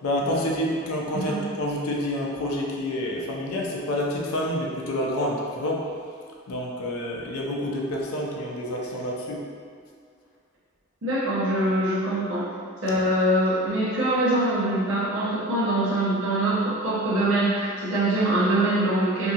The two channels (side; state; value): both; normal; correlation 0.34